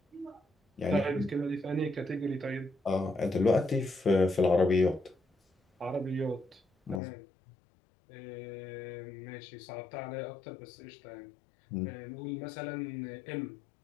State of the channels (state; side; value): drops out; right; at 7.0 s